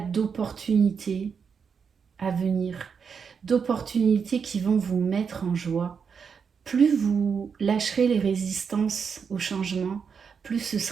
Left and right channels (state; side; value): quieter; left; 6.3 dB